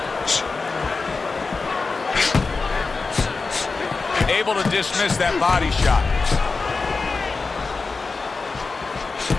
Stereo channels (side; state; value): right; quieter; 4.2 dB